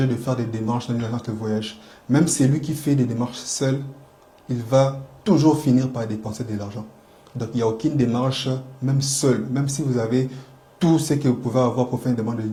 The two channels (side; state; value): both; identical; correlation 1.00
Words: de faire des démarches dans une agence de voyage. Même celui qui fait des démarches seul, il va toujours finir par dépenser de l'argent. Donc, il n'y a aucune démarche, même seul, même si vous avez tout ce que vous pouvez avoir pour faire une demande